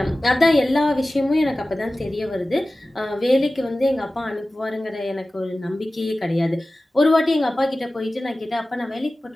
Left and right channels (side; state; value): both; normal; correlation 0.96